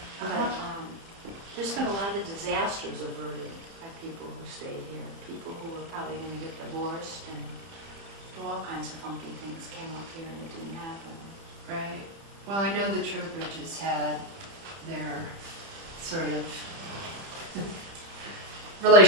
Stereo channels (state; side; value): late; left; 30 ms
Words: But there's been a lot of disasters averted by people who stayed here. People who were probably going to get divorced and do all kinds of funky things came up here and it didn't happen. Right. Well, I know the Trowbridges had their sort of